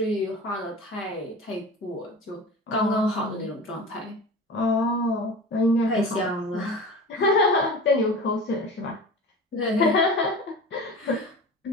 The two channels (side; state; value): both; normal; correlation 0.34